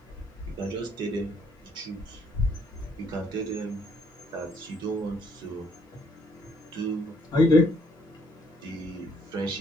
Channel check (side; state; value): both; normal; correlation 0.67